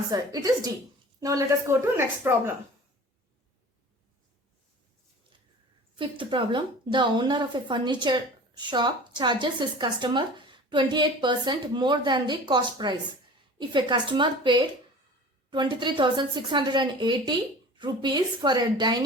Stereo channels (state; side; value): normal; both; correlation 0.41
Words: It is D. Now let us go to next problem. Fifth problem. The owner of a furniture shop charges his customer 28% more than the cost price. If a customer paid 23,680 rupees for a